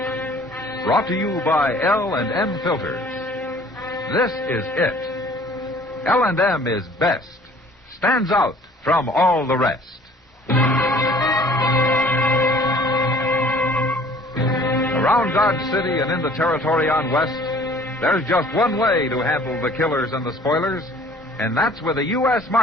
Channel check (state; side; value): normal; both; correlation 0.53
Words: Brought to you by L&M Filters. This is it. L&M is best. Stands out from all the rest. Around Dodge City and in the territory on West, there's just one way to handle the killers and the spoilers, and that's with a U.S.